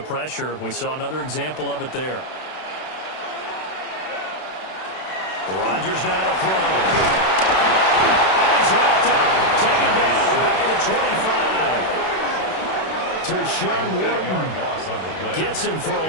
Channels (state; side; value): late; right; 32 ms